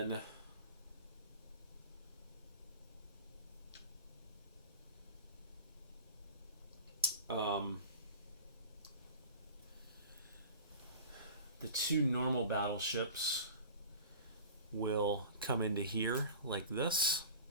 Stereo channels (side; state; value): both; inverted; correlation -0.37